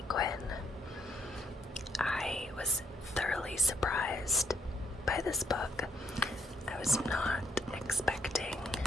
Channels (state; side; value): normal; both; correlation 0.71